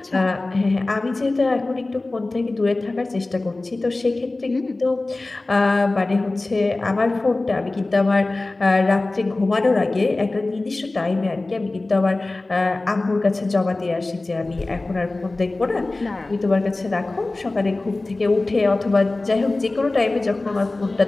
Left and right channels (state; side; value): quieter; right; 3.0 dB